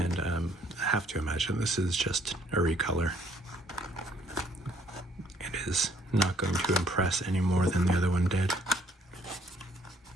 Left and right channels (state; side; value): normal; both; correlation 0.63